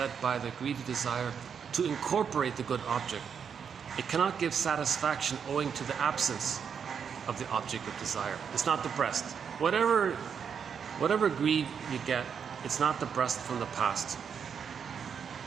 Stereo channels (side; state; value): left; quieter; 7.1 dB